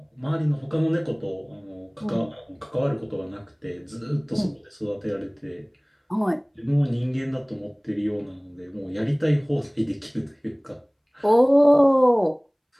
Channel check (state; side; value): identical; both; correlation 1.00